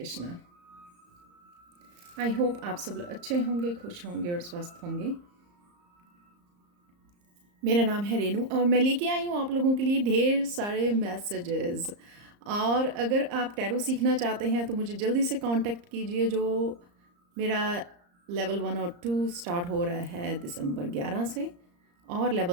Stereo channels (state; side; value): late; left; 34 ms